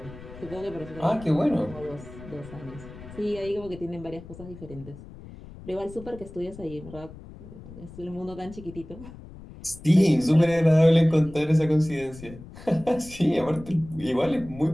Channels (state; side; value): noise; left; rumble, 16 dB below the sound